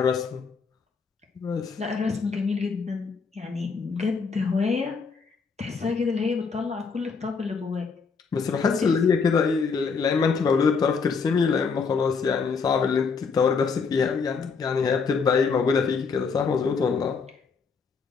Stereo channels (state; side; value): quieter; right; 5.2 dB